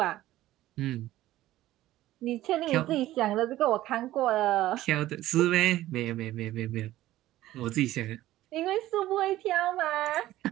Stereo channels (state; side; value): quieter; left; 15.1 dB